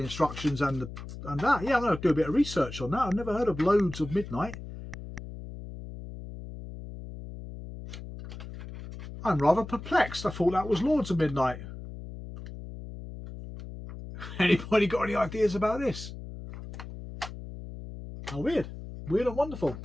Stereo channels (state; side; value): noise; left; hum, 11 dB below the sound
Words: instructions and that. Yeah, I'm going to do a bit of research on that. I've never heard of Loads of Midnight. I'm rather perplexed. I thought that was Lords of Midnight. Anybody got any ideas about this? How weird. Weird and wonderful.